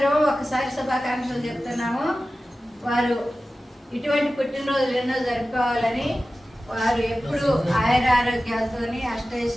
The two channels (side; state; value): both; normal; correlation 0.95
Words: ఒకసారి శుభాకాంక్షలు చెప్తున్నాము. వారు ఇటువంటి పుట్టినరోజులు ఎన్నో జరుపుకోవాలని, వారు ఎప్పుడు ఆయుర ఆరోగ్యాలతోని